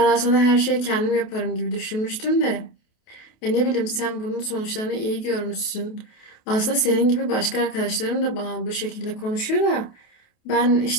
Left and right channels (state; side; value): late; right; 28 ms